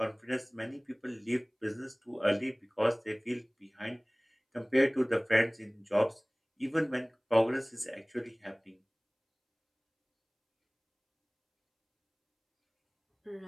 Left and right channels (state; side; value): identical; both; correlation 1.00